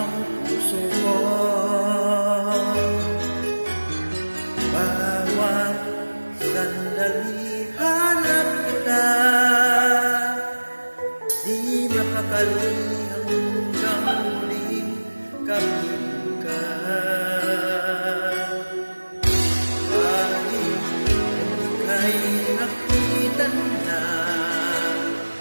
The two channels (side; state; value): both; inverted; correlation -1.00